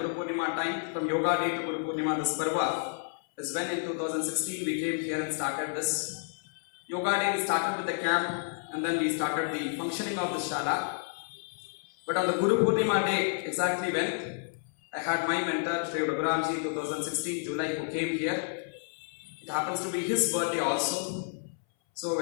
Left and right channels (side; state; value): right; silent; 58 dB below the other